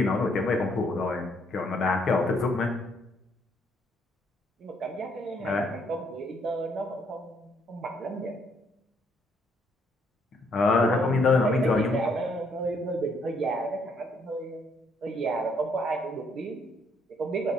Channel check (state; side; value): normal; both; correlation 0.69